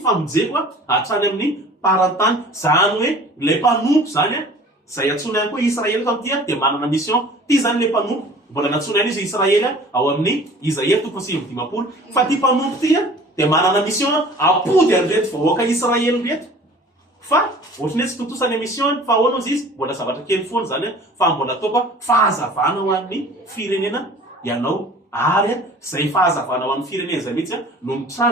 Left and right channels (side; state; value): both; normal; correlation 0.46